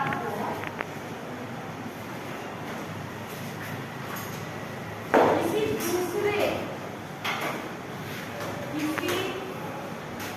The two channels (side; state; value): both; identical; correlation 1.00